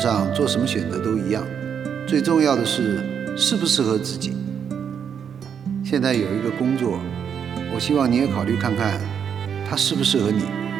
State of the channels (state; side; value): quieter; left; 7.7 dB